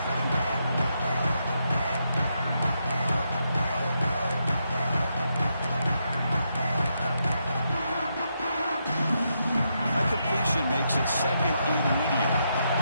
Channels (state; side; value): inverted; both; correlation -0.81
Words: A completion makes it 2nd and medium.